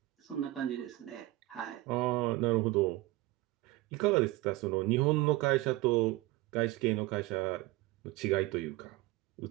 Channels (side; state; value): left; quieter; 19.1 dB